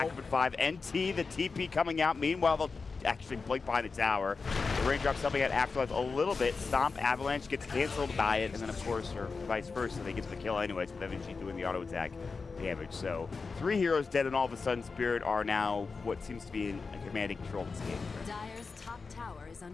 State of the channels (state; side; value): quieter; right; 4.6 dB